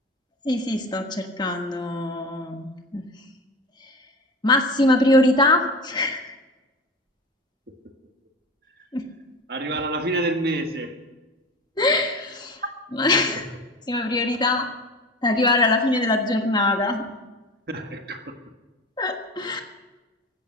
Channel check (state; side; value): normal; both; correlation 0.30